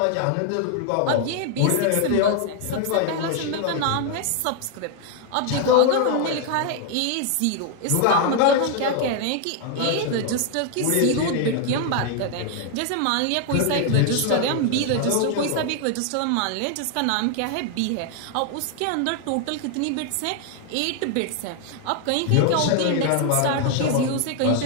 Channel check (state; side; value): different; both; correlation 0.00